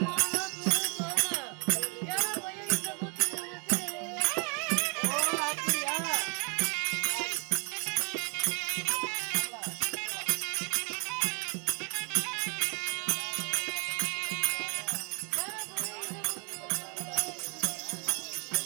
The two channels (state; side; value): quieter; left; 36.9 dB